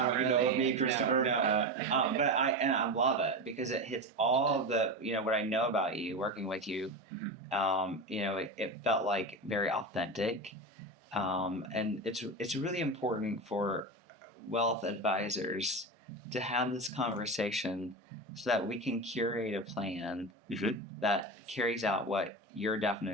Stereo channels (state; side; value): normal; both; correlation 0.21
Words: How really. you know of me, Christopher? No. But I love it because it hits all of the, you know, what I know about you, working with you. Mm-hmm. You know, it felt like very authentic, and it's really important for wealth advisors to have this conversation so that we can curate a plan that carries out what your